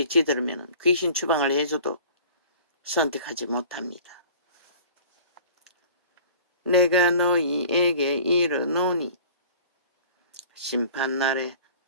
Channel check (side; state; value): both; inverted; correlation -0.46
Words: 찌들으면 귀신 추방을 해줘도 선택하지 못합니다. 내가 너희에게 이르노니 심판날에